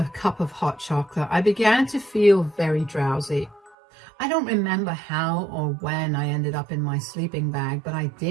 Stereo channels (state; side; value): drops out; left; at 3.8 s